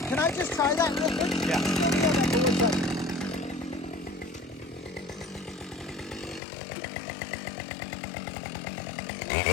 Can I just try that real quick? Yeah. Go inside.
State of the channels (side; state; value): right; drops out; at 6.4 s